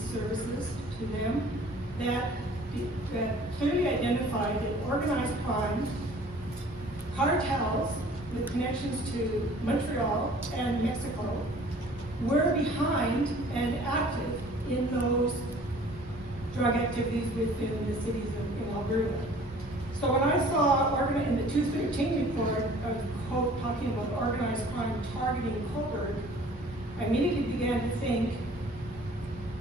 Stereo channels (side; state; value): both; normal; correlation 0.51